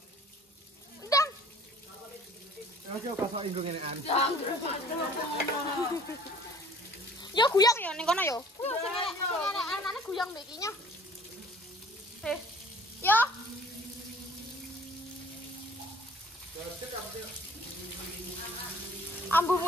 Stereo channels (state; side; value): normal; both; correlation 0.52